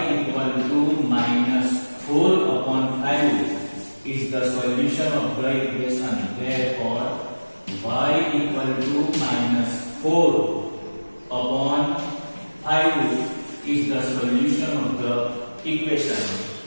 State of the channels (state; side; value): inverted; both; correlation -1.00